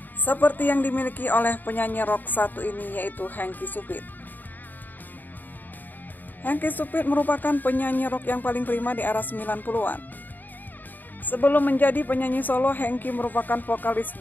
seperti yang dimiliki oleh penyanyi rock satu ini, yaitu Hengky Sufit. Hengky Sufit merupakan penyanyi rock yang paling prima di era 90-an. Sebelum menjadi penyanyi solo, Hengky merupakan vokalis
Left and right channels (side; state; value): right; late; 0.088 ms